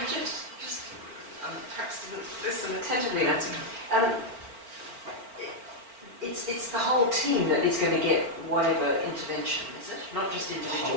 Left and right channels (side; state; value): left; late; 4.4 ms